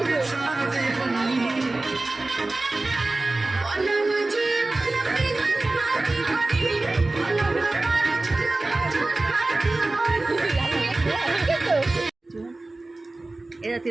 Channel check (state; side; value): quieter; left; 3.0 dB